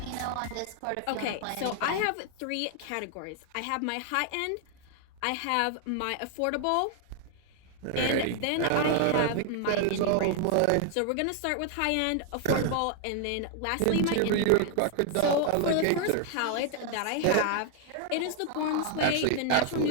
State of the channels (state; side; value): different; both; correlation 0.00